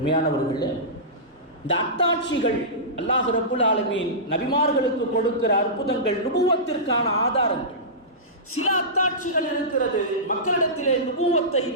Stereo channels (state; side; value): normal; both; correlation -0.18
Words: இந்த அத்தாட்சிகள் அல்லாஹ் ரப்புல் ஆலமீன் நபிமார்களுக்கு கொடுக்கிற அற்புதங்கள், நுபுவத்திற்கான ஆதாரங்கள். சில அத்தாட்சிகள் இருக்கிறது மக்களிடத்திலே நுபுவத்தை,